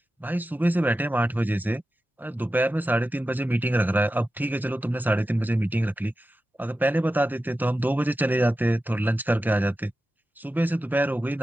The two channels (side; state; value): both; normal; correlation 0.92